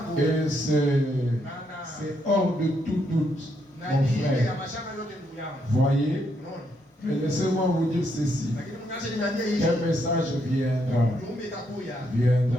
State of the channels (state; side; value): normal; both; correlation 0.76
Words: Et c'est hors de tout doute, mon frère. Voyez? Mais laissez-moi vous dire ceci. Quel message viendra?